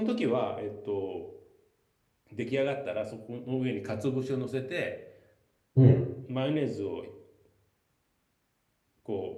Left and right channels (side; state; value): both; identical; correlation 1.00